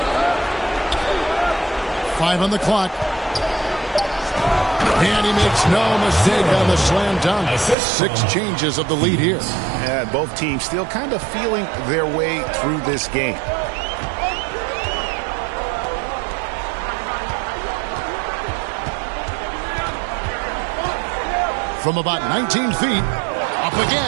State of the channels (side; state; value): left; drops out; at 7.8 s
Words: Five on the clock. And he makes no mistake on the slam dunk. 6 changes of the lead here. Yeah, both teams still kind of feeling their way through this game. From about 19 feet, up